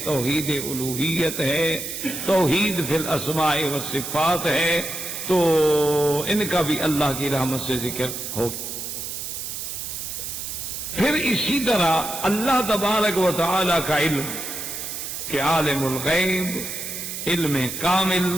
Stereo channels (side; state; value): right; noise; hiss, 6 dB below the sound